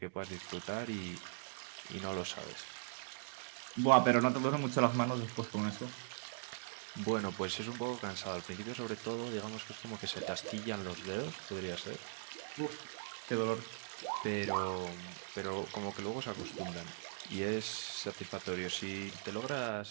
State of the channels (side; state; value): left; silent; digital silence